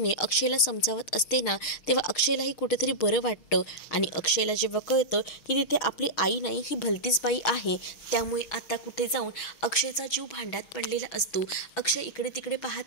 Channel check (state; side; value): late; right; 6.4 ms